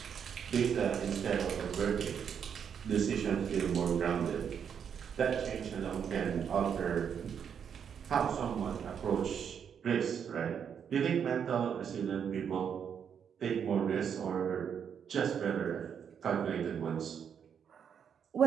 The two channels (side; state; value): left; quieter; 7.7 dB